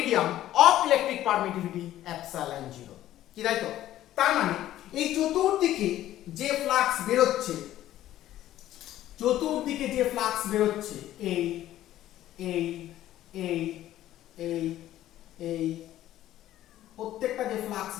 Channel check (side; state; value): right; quieter; 13.4 dB